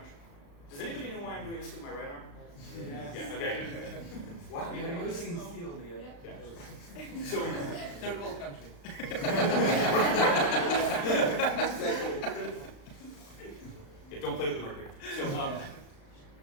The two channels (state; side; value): late; right; 35 ms